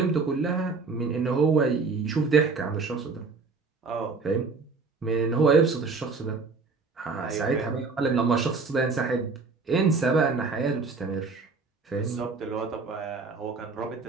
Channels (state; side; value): quieter; left; 4.4 dB